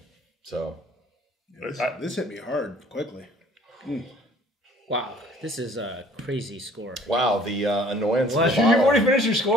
So this hit me hard quickly. Wow, this is a crazy score. wow, the annoyance of the You've bottle. already finished your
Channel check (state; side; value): normal; both; correlation 0.55